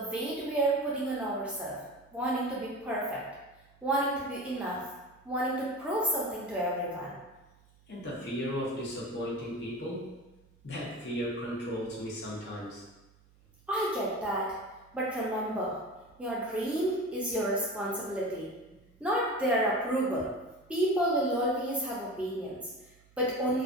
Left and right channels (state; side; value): noise; right; hum, 29 dB below the sound